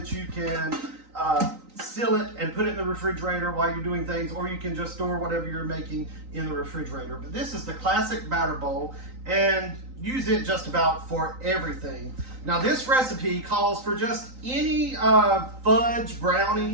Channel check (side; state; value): left; late; 3.9 ms